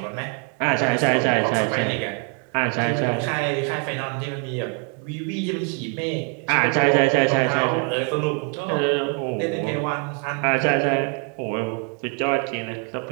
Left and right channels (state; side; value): quieter; left; 37.0 dB